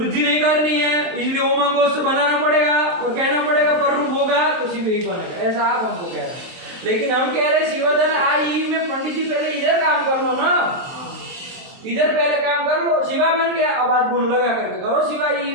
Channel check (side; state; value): left; late; 23 ms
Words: नहीं करनी है इसलिए ओमांग गोष्ठ बनाना पड़ेगा और कहना पड़ेगा पर रूप होगा तो शिव ही बनेगा, ऐसा आप हमको कह रहे हैं। लेकिन हम कह रहे हैं शिवधन आ ई में पंडित जी पहले इधर काम कर लो ना, इधर पहले काम कर लो, शिवा बन गया, अब आप गुण लगा करके करो शिवा ई